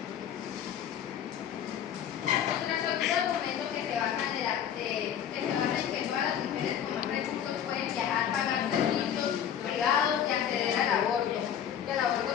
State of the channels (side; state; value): right; quieter; 9.4 dB